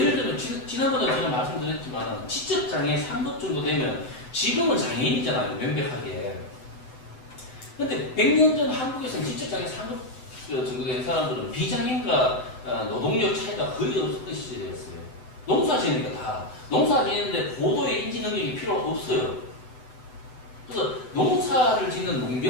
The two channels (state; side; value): late; right; 8.0 ms